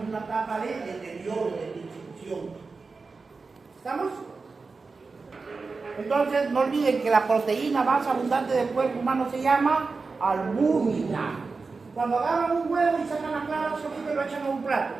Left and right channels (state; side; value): quieter; left; 4.3 dB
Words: una etapa de deterioro, de distribución. ¿Estamos? Entonces, no olviden que la proteína más abundante del cuerpo humano se llama albúmina. Cuando agarran un huevo y sacan la clara solita y lo echan a un plato,